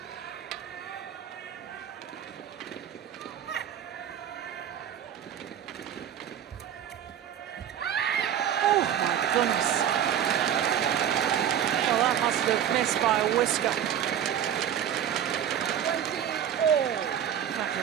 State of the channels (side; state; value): left; quieter; 9.7 dB